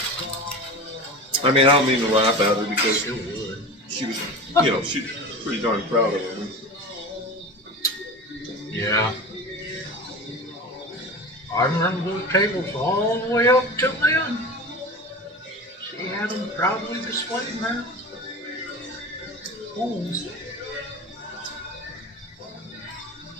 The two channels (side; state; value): both; normal; correlation 0.31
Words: I mean, I don't mean to laugh at her because she was, she's pretty darn proud of it. Yeah. I remember those tables all the way up till then. She had them proudly displayed in her homes.